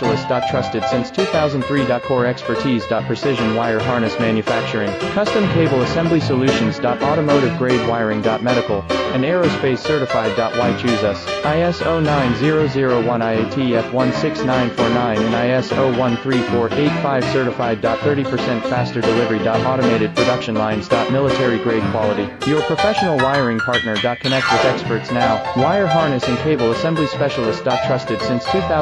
Trusted since 2003. Core expertise. Precision wire harness manufacturing. Custom cable assembly solutions. Automotive grade wiring. Medical and aerospace certified. Why choose us? ISO 9001 IATF 16949 and ISO 13485 certified. 30% faster delivery. Automated production lines. Military grade quality. Your professional wiring partner. Connect with experts now. Wire harness and cable assembly specialist. Trusted since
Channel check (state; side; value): identical; both; correlation 1.00